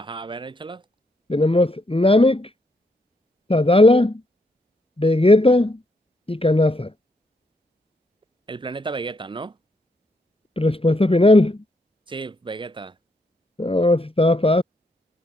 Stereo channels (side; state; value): both; normal; correlation 0.75